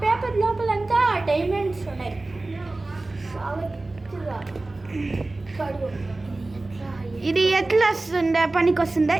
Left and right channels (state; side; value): quieter; left; 3.1 dB